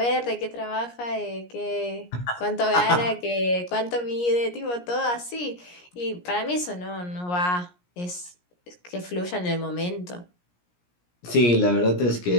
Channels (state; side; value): late; right; 17 ms